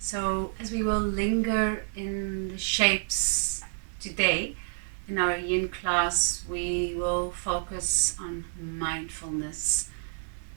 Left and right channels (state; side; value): silent; left; digital silence